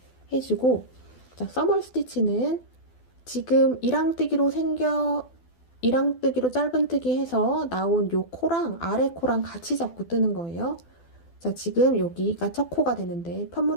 해주고, 자, 써멀 스티치는 지금 2랑뜨기로 짧은뜨기 해서 나온 요 코랑 아래 코랑 같이 잡고 뜨는 거예요. 자, 지금 여기가 첫 코가 되는데,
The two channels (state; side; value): late; right; 12 ms